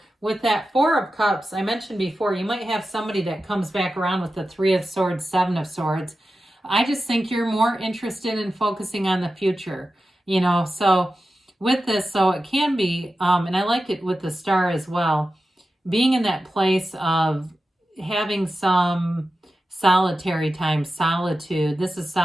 with that Four of Cups, I mentioned before, you might have somebody that comes back around with the Three of Swords, Seven of Swords. I just think you're more interested in focusing on the future, so with this, so it can be, and I like it with the Star as well, being in that place of having some solitary time, solitude. This is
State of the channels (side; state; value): both; normal; correlation 0.92